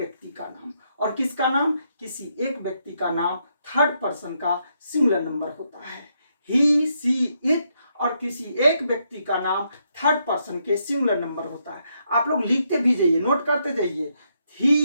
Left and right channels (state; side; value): inverted; both; correlation -0.78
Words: का नाम, और किसका नाम, किसी एक व्यक्ति का नाम थर्ड पर्सन का सिंगुलर नंबर होता है। ही सी इट और किसी एक व्यक्ति का नाम थर्ड पर्सन के सिंगुलर नंबर होता है। आप लोग लिखते भी जाइए, नोट करते जाइए।